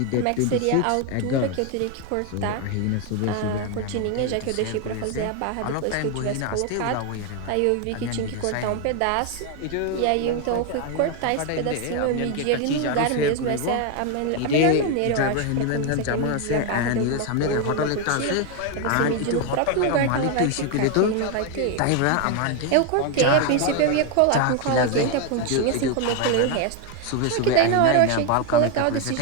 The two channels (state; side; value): different; both; correlation 0.01